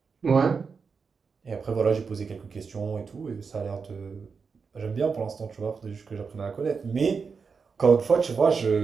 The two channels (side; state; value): left; quieter; 5.3 dB